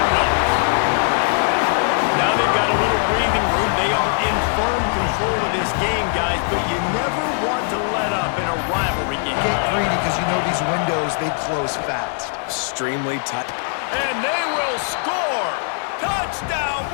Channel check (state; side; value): silent; right; 58 dB below the other